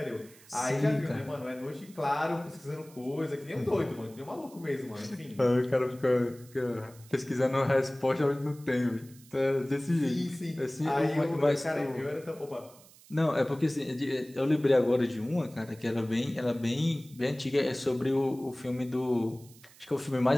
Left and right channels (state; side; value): noise; right; hiss, 24 dB below the sound